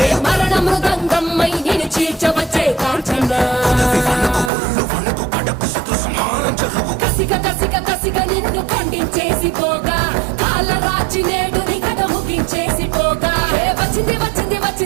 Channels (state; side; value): drops out; left; at 4.5 s